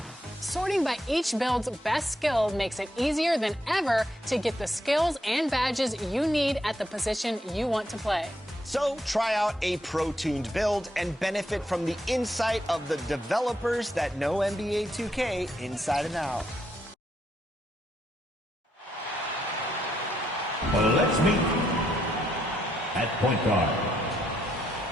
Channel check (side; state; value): both; normal; correlation 0.77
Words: Sorting by each build's best skill makes it easier than ever to get the skills and badges you need at the position you want to play. So try out a pro-tuned build and benefit from the insight of the developers that know NBA 2K inside and out. Let's meet at point guard.